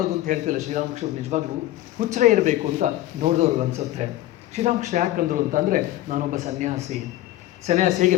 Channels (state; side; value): quieter; right; 15.0 dB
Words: ಅಂತ ಹೇಳ್ತಿಲ್ಲ. ಶ್ರೀರಾಮಕೃಷ್ಣ ನಿಜವಾಗ್ಲೂ ಹುಚ್ಚರೇ ಇರಬೇಕು ಅಂತ ನೋಡಿದವ್ರಿಗೆ ಅನ್ಸುತ್ತೆ. ಶ್ರೀರಾಮಕೃಷ್ಣ ಯಾಕಂದ್ರು ಅಂತಂದರೆ, ನಾನೊಬ್ಬ ಸನ್ಯಾಸಿ